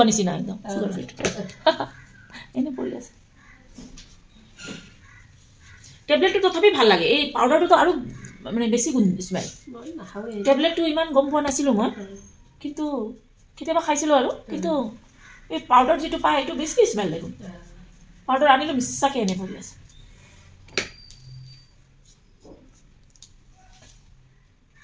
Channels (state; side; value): identical; both; correlation 1.00